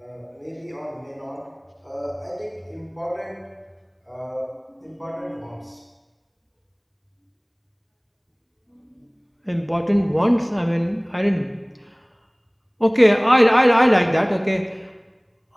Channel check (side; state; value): both; identical; correlation 1.00